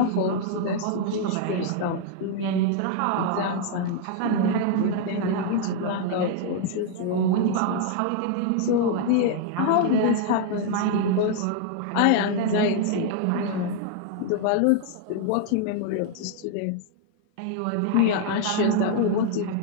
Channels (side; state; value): both; different; correlation 0.00